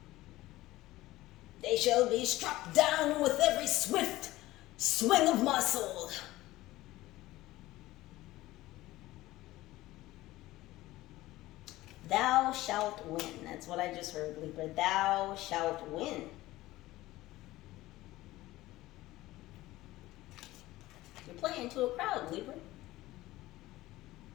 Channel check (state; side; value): quieter; right; 17.4 dB